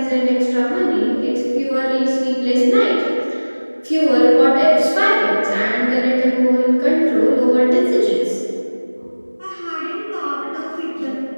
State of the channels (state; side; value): inverted; both; correlation -1.00